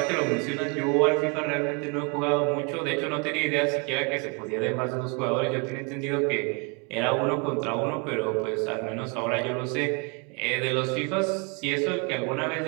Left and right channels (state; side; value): quieter; left; 32.1 dB